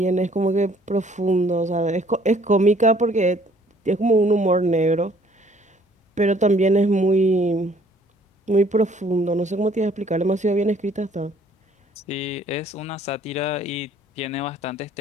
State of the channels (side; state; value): both; normal; correlation 0.59